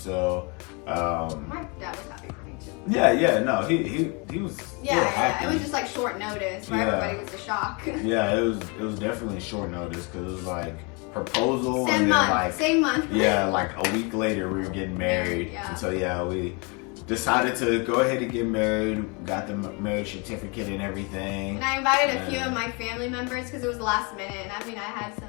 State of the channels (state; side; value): quieter; right; 31.4 dB